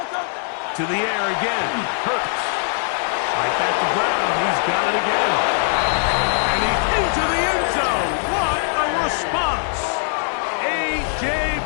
To the air again. Hurts. Right back to Brown. He's got it again. And he's into the end zone. What a response. A.J.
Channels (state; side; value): silent; right; 61 dB below the other